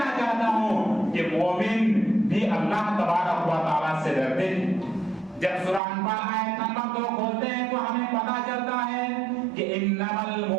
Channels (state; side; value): drops out; left; at 5.8 s